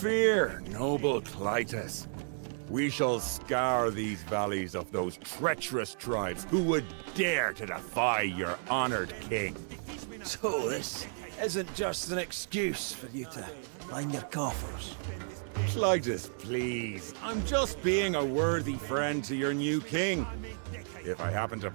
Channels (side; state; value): left; silent; 56 dB below the other